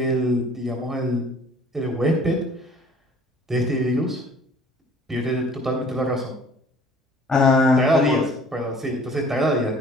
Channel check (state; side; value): normal; both; correlation 0.52